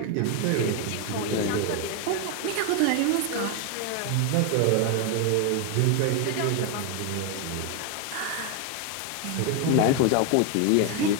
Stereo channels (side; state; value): both; different; correlation 0.01